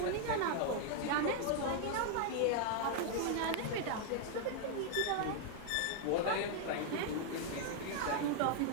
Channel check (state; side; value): different; both; correlation 0.00